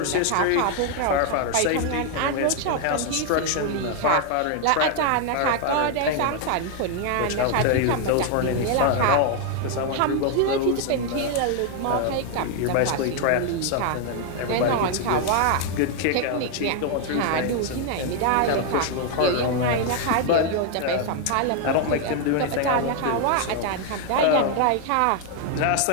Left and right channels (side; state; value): both; different; correlation 0.00